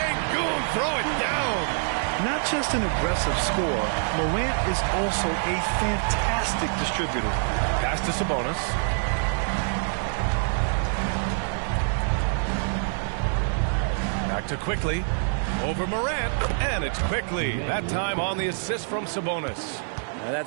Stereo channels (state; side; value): silent; left; 61 dB below the other